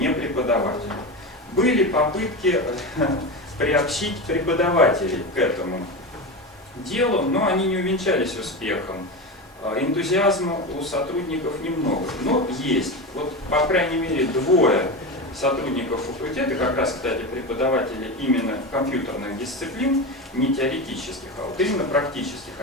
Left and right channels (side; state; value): both; normal; correlation 0.21